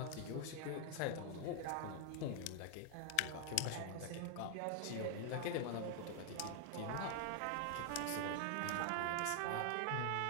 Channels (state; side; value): different; both; correlation 0.00